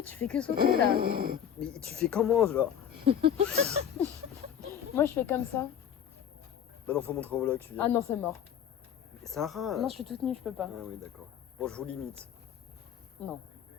tu fais que sauter là. Mais tu fais comment, genre? Moi, je fais comme ça. Bah non, faut montrer au vlog, tu viens. Ah non, c'est mort. Sarah. Non, je suis toute nue, je peux pas. Ah oui, d'accord. Bon, je vous limite. Non.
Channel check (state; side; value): quieter; right; 9.1 dB